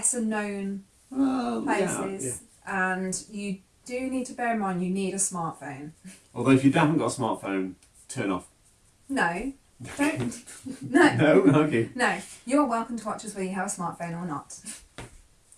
known places, and you do need to bear in mind you need a smartphone. Although if you haven't got a smartphone, turn off. No, don't. No. No, okay. No, you're welcome to watch us whether you have a smartphone or not.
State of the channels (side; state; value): both; identical; correlation 1.00